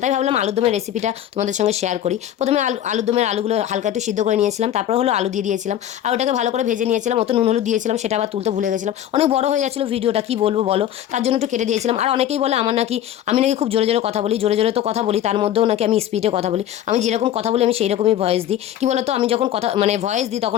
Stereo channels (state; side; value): quieter; right; 11.2 dB